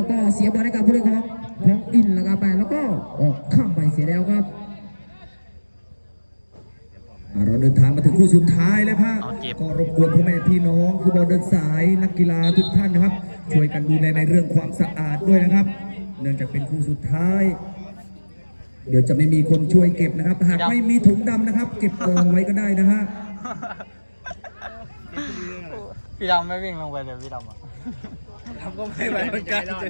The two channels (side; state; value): both; inverted; correlation -1.00